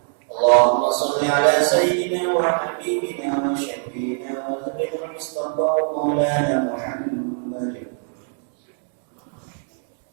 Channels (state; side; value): silent; left; digital silence